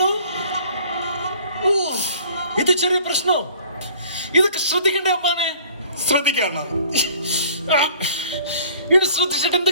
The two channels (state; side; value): inverted; both; correlation -0.52